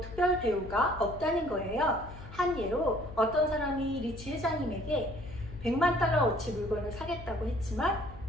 대우가 없다는 거예요. 한 예로 어떤 사람이 리치 회장님에게 100만 달러어치 물건을 사겠다고 했지만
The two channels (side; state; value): left; noise; hum, 14 dB below the sound